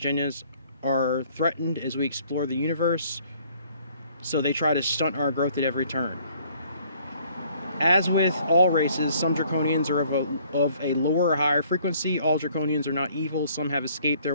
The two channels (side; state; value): both; inverted; correlation -0.60